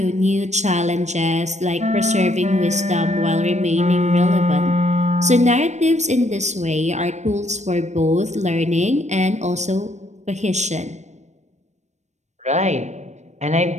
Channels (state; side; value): late; left; 0.34 ms